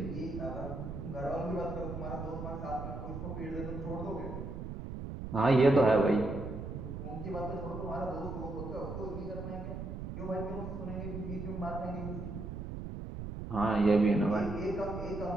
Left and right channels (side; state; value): right; noise; rumble, 7 dB below the sound